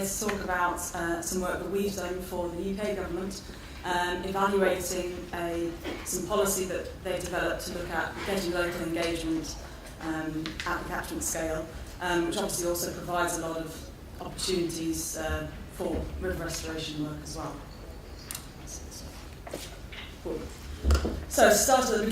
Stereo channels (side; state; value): both; identical; correlation 1.00